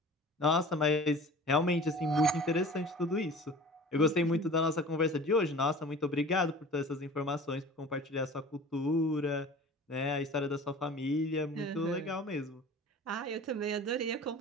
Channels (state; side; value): normal; both; correlation 0.42